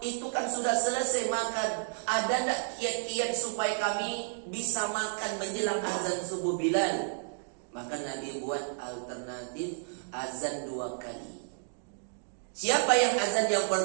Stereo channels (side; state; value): left; silent; digital silence